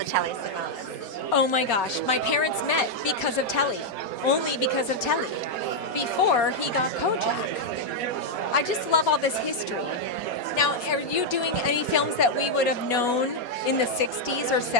Telly Savalas. Oh my gosh, my parents met because of Telly, only because of Telly, before he got Kojak. I just love all this history. Now, are you doing any films that we would have known in the 60s or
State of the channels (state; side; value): late; right; 4.2 ms